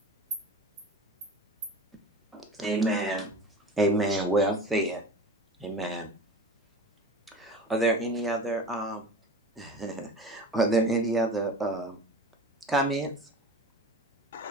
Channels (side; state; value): both; normal; correlation 0.34